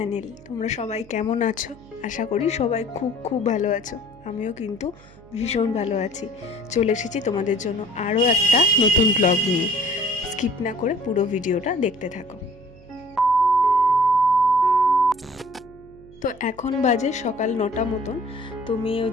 তোমরা সবাই কেমন আছো? আশা করি সবাই খুব খুব ভালো আছো। আমিও কিন্তু ভীষণ ভালো আছি। চলে এসেছি তোমাদের জন্য আরও একটা নতুন ব্লগ নিয়ে। স্কিপ না করে পুরো ভিডিওটা দেখতে থাকো। তো এখন বাজে সকাল 9টা মতন। তো মেয়ে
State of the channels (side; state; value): right; noise; hum, 23 dB below the sound